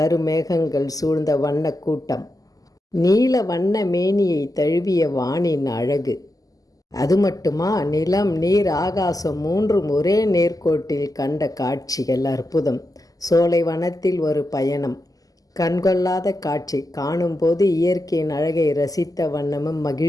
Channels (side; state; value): right; late; 0.17 ms